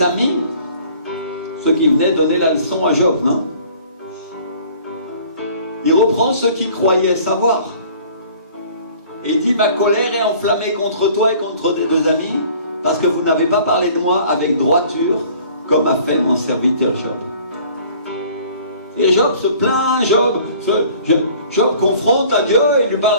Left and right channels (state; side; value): inverted; both; correlation -0.51